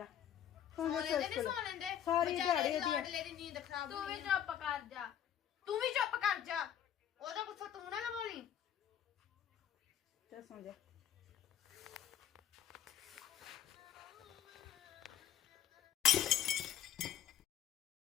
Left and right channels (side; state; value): right; quieter; 10.2 dB